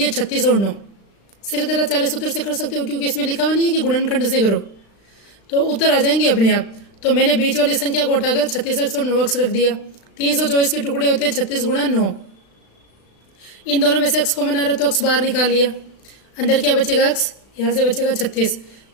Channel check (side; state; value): right; late; 36 ms